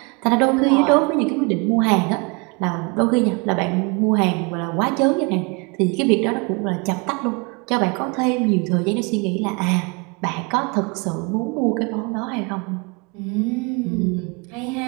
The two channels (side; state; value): left; quieter; 30.8 dB